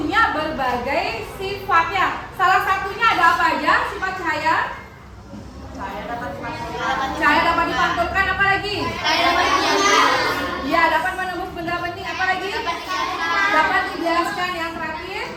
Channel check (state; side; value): identical; both; correlation 1.00